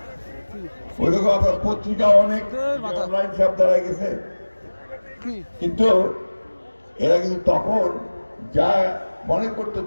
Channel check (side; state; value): both; inverted; correlation -1.00